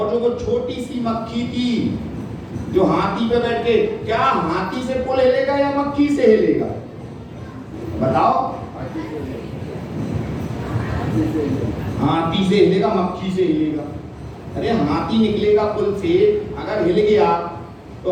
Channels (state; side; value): identical; both; correlation 1.00